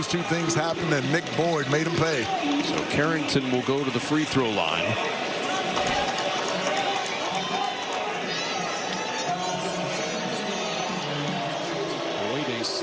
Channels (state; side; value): identical; both; correlation 1.00